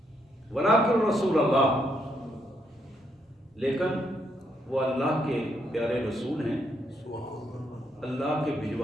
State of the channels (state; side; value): normal; both; correlation 0.76